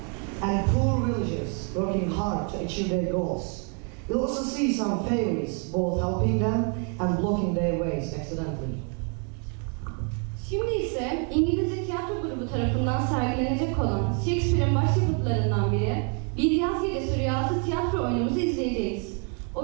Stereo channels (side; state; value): left; quieter; 38.3 dB